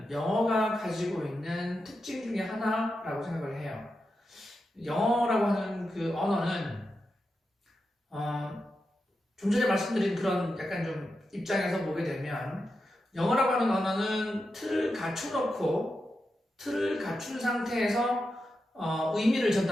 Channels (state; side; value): normal; both; correlation 0.89